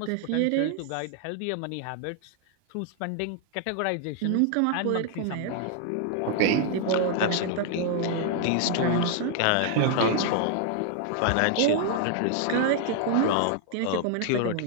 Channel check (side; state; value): both; different; correlation 0.00